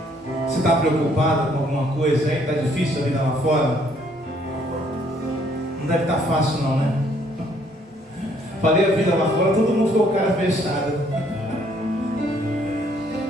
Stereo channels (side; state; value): both; normal; correlation 0.65